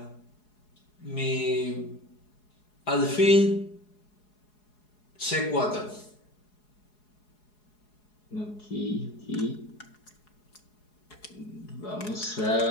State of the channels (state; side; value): late; right; 4.8 ms